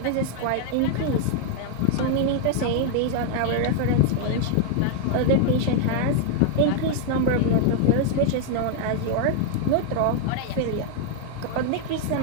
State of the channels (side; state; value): both; different; correlation 0.00